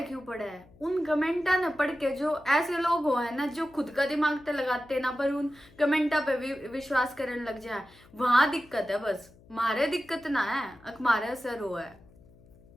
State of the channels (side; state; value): left; noise; hum, 26 dB below the sound